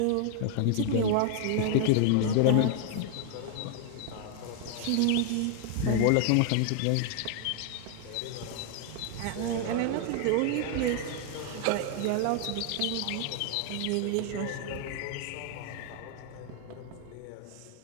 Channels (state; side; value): different; both; correlation 0.00